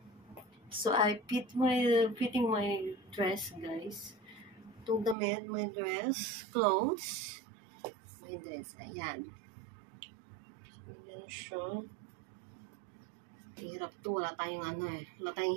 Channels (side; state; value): left; drops out; at 5.2 s